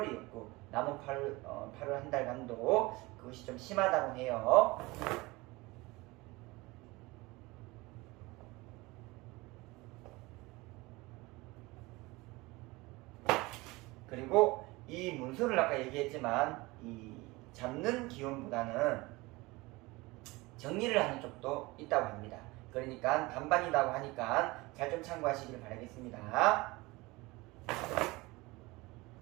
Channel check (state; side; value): quieter; left; 22.3 dB